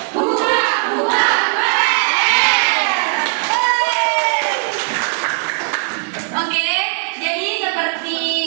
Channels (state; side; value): silent; left; 58 dB below the other